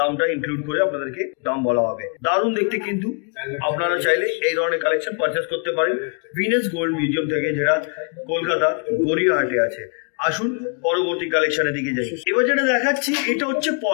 ইনক্লুড করে আপনাদেরকে দাম বলা হবে। দারুণ দেখতে কিন্তু। আপনারা চাইলে এই ধরনের কালেকশন পারচেস করতে পারেন ভিনাস গোল্ড মিউজিয়াম থেকে, যেটা কলকাতা গড়িয়াহাটে আছে। আসুন পরবর্তী কালেকশনের দিকে যাই। এবার যেটা দেখাচ্ছি এটা হচ্ছে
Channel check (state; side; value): quieter; right; 39.1 dB